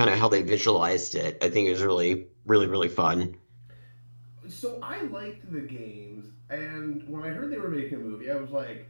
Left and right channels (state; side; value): inverted; both; correlation -1.00